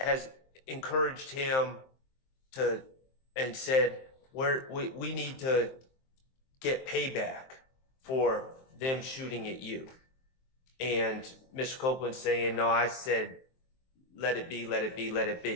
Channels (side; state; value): right; late; 23 ms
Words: encouraged him to, and said, we need to get payback for them shooting at you. And Mr. Copeland saying, no, I said, let it be, let it be, let it